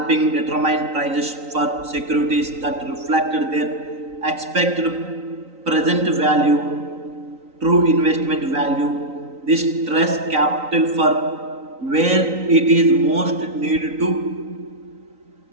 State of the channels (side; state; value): left; late; 3.9 ms